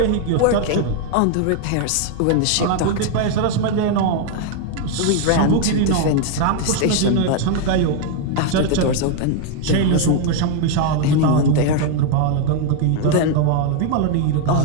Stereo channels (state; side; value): different; both; correlation 0.01